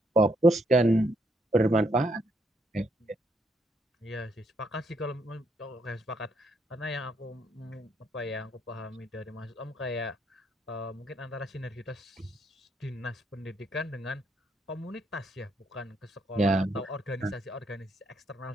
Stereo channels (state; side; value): normal; both; correlation 0.73